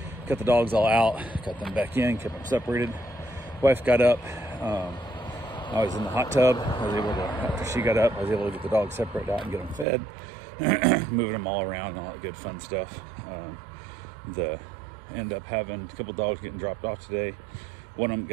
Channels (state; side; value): drops out; left; at 9.9 s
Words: Got the dogs all out, got them back in, kept them separated. Wife got up. I was in the hot tub. I was able to, after she got up, I was able to get the dogs separated out and get them fed, moving them all around and all that good fun stuff. End up having a couple dogs getting dropped off today. One of them